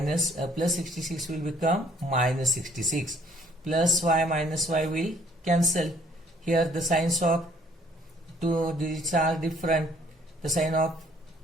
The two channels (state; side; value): normal; both; correlation 0.61